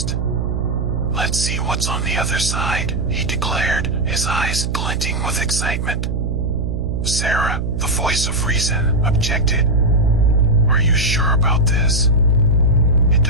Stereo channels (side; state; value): right; noise; hum, 2 dB below the sound